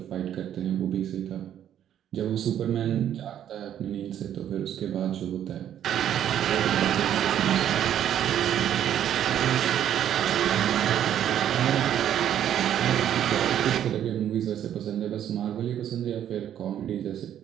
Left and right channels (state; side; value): quieter; left; 10.4 dB